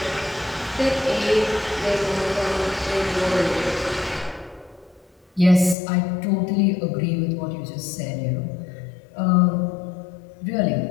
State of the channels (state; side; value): drops out; right; at 5.8 s